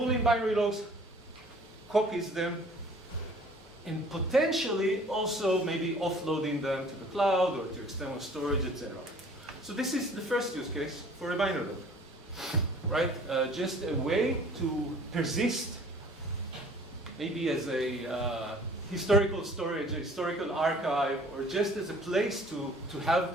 binary logs, copies them, and potentially also maybe offloading them to the cloud or to external storage, etc. So this is the first use case for a binary log, right? Just a way to persist, maybe as a historical storage, a historical archive, or just as a place to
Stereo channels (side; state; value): both; normal; correlation 0.51